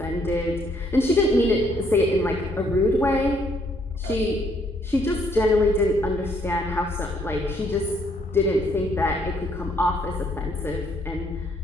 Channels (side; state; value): both; normal; correlation 0.68